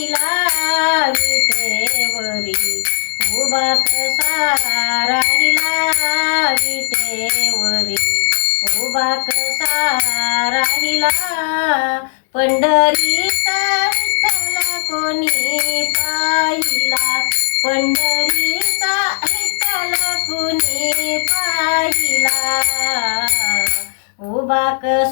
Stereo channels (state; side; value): silent; right; digital silence